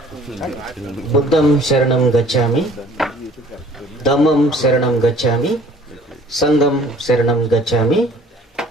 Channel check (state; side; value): normal; both; correlation 0.53